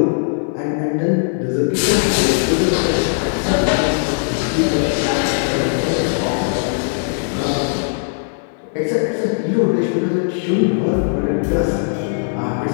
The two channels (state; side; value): silent; right; digital silence